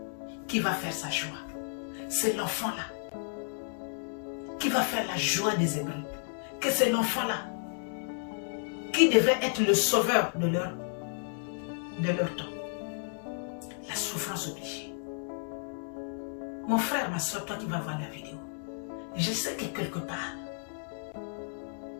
qui va faire sa joie. C'est l'enfant-là qui va faire la joie des Hébreux. Que c'est l'enfant-là qui devait être le sauveur de leur temps. La souffrance obligée. Mon frère, ma soeur, toi qui vas voir la vidéo, je sais que quelque part,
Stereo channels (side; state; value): right; silent; digital silence